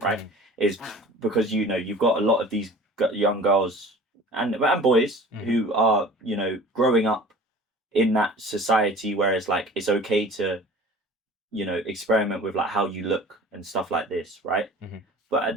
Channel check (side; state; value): both; normal; correlation 0.43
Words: Is because you've got a lot of these young girls and boys who are growing up in that society where it's like it's okay to experiment with like how you look and stuff like this, right? But at